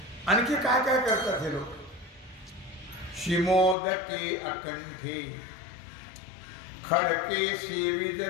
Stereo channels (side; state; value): right; drops out; at 3.8 s